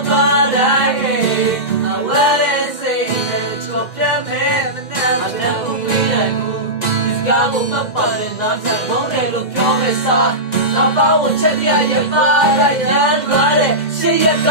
်သွားတိုင်းအဝဲလေးစိတ်နဲ့ချော်ပြတ်မဲ့မနဲ့မနဲ့ဦးပေးနိုင်ဘူးဒီကားကိုမပတ်တဲ့နားဆက်ကောင်းတယ်လို့ပြောမဲ့စားနောက်ပေါင်းချက်ရရပါလိုက်ရန်လာတဲ့ရှေ့ရက်က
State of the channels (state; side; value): late; right; 2.0 ms